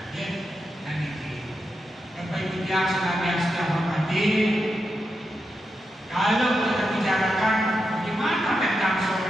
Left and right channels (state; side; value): normal; both; correlation 0.87